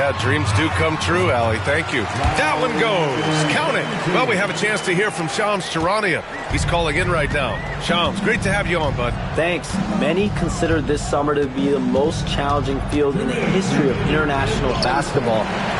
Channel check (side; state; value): both; identical; correlation 1.00